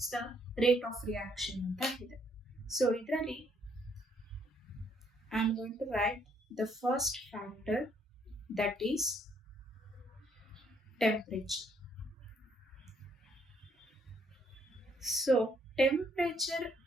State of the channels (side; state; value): both; normal; correlation 0.69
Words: the rate of reaction ಅಂತ ಇದೆ. So ಇದರಲ್ಲಿ I am going to write the first factor, that is temperature. So temperature